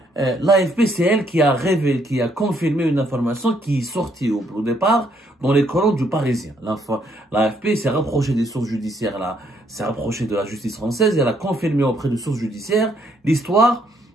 L'AFP, c'est elle qui a révélé, qui a confirmé une information qui est sortie au départ dans les colonnes du Parisien. L'AFP s'est rapprochée des sources judiciaires, s'est rapprochée de la justice française et elle a confirmé auprès de sources judiciaires l'histoire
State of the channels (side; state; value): both; normal; correlation 0.70